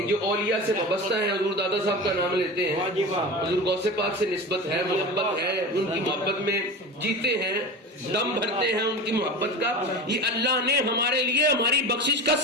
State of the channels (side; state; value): both; normal; correlation 0.30